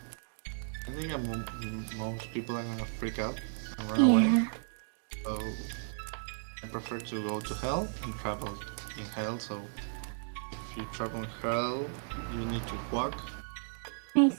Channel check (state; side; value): silent; left; digital silence